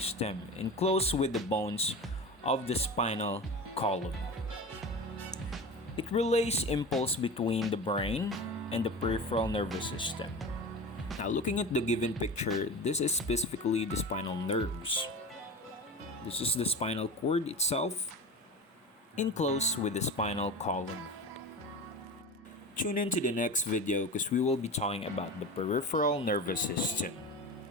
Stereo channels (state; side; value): normal; both; correlation 0.30